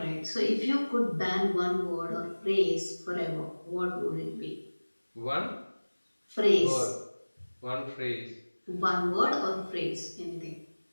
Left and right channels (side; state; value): both; inverted; correlation -1.00